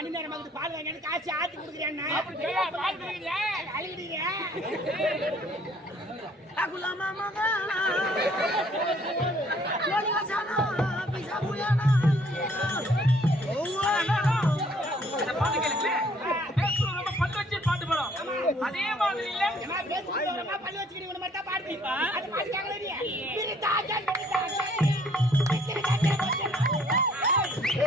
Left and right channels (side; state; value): both; normal; correlation 0.61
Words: நேரம் பால் வாங்கி காசு ஆத்தி கொடுக்குறேன். அழுகிறீங்க அதே மாதிரி இல்ல பள்ளி வச்சுக்கிறீங்க மட்டும் பாடுப்பா.